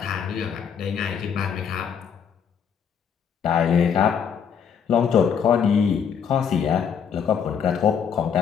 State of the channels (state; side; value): quieter; right; 7.4 dB